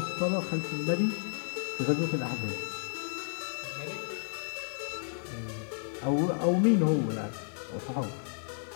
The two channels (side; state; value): right; silent; digital silence